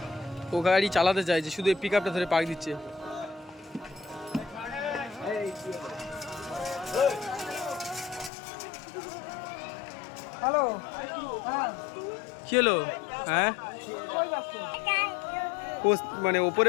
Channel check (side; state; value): right; drops out; at 8.3 s